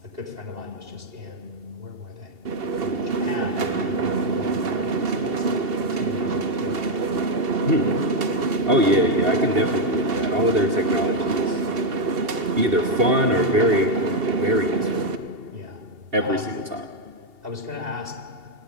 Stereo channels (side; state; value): left; late; 2.7 ms